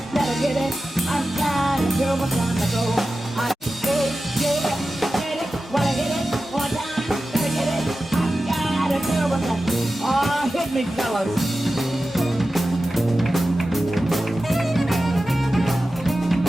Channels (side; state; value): both; normal; correlation 0.94